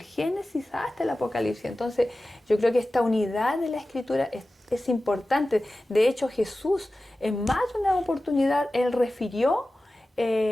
hasta el Apocalipsis. Entonces yo creo que esta unidad de la Escritura es importante. De hecho, Jesús en más de una oportunidad, Él refirió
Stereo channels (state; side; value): normal; both; correlation 0.95